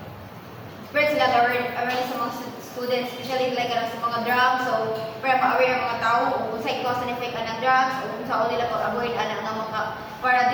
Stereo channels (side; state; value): both; identical; correlation 1.00